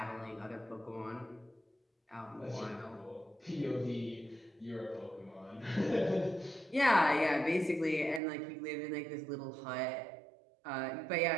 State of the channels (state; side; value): drops out; left; at 8.2 s